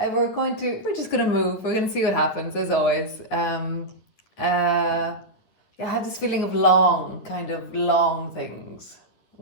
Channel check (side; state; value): right; late; 10 ms